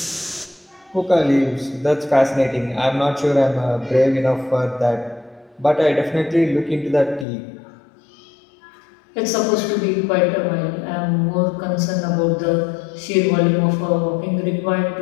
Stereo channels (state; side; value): drops out; right; at 7.2 s